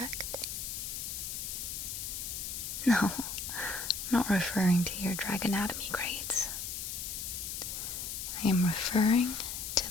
No, I'm not referring to your dragonatomy grades. I am referring to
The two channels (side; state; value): left; noise; hiss, 5 dB below the sound